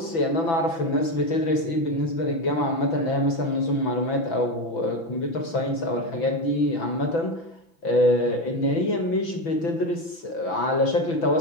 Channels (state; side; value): late; right; 6.0 ms